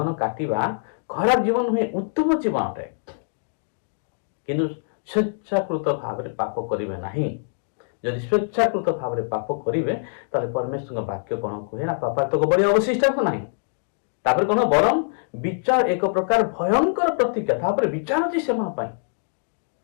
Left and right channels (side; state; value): right; silent; digital silence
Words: काटिबा खराब जीवन हुए उत्तम जीवन अटे किंतु स्वेच्छाकृत भाव में पाप करिवे नहीं यदि स्वेच्छाकृत भाव में पाप करिवे ताले परमेश्वर वाक्य कौन कहे ना पाप तो बड़ी अवशिष्ट को नहीं तापर कौन बरम विचार एक प्रकार भयंकर प्रतिज्ञा तापर विचार अछि सेमा पाई